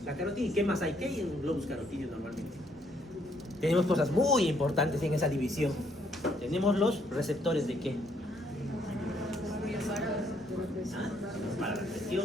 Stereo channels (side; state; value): both; normal; correlation 0.69